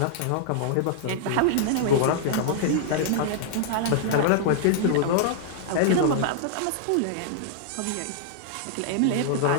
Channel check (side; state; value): both; different; correlation -0.01